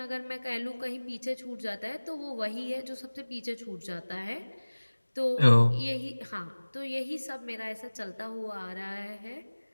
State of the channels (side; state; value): both; inverted; correlation -1.00